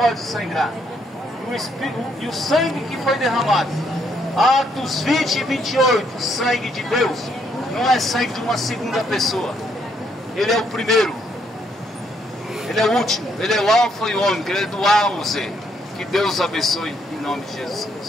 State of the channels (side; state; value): both; normal; correlation 0.72